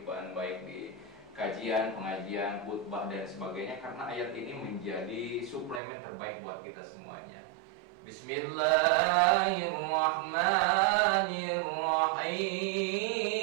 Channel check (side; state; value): left; drops out; at 5.8 s